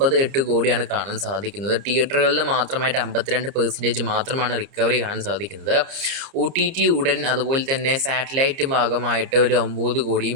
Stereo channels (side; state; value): left; late; 30 ms